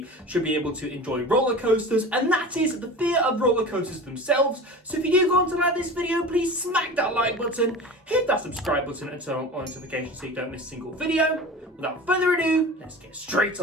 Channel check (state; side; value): normal; both; correlation 0.35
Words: should be able to enjoy roller coasters, and that is the fear of roller coasters themselves. So if you do go on to like this video, please smack that like button, hit that subscribe button and turn on notifications so you don't miss a single video. Without further ado, let's get straight